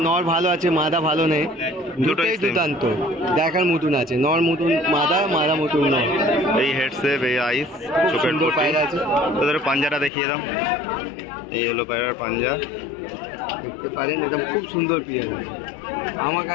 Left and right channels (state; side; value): drops out; right; at 10.1 s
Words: নর ভালো আছে, মাদা ভালো নেই, দুটোই দুর্দান্ত দেখার মতন আছে। নর মতন মাদা, মাদা মতন নর। এই হেডসেপ, এই আইস, চোখের পায়রা আছে। তোদের পাঞ্জাটা দেখিয়ে দাও। এই হলো পায়রার পাঞ্জা, দেখতে পারেন, একদম খুব সুন্দর পেয়ার। আমার